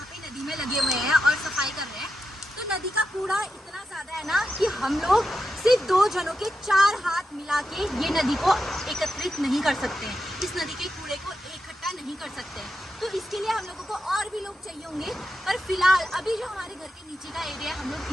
पे नदी में लगे हुए हैं और सफाई कर रहे हैं। तो नदी का कूड़ा इतना ज़्यादा है ना कि हम लोग सिर्फ 2 जनों के 4 हाथ मिला के ये नदी को एकत्रित नहीं कर सकते हैं, इस नदी के कूड़े को इकट्ठा नहीं कर सकते हैं। तो इसके लिए हम लोगों को और भी लोग चाहिए होंगे, पर फिलहाल अभी जो हमारे घर के नीचे का एरिया है हम लोग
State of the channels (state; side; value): normal; both; correlation 0.88